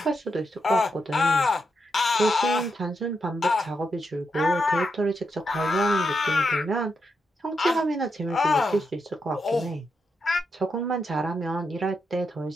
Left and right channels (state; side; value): normal; both; correlation 0.83